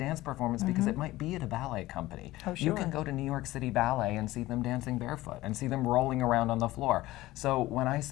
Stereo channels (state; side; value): quieter; right; 17.4 dB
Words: performance because it might be at a ballet company. Oh, sure. You can go to New York City Ballet and see them dancing barefoot and see them rolling around on the floor. So when I